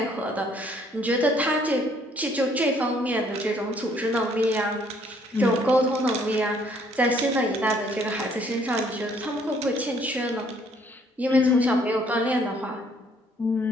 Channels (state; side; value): normal; both; correlation 0.64